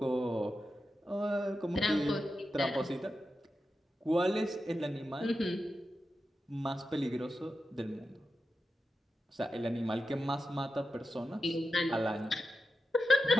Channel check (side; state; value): both; normal; correlation 0.90